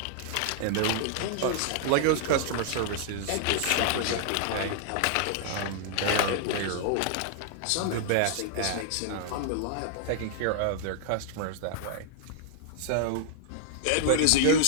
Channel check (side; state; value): both; different; correlation 0.00